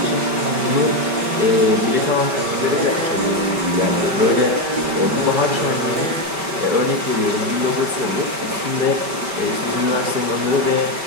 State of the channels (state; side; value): late; left; 5.1 ms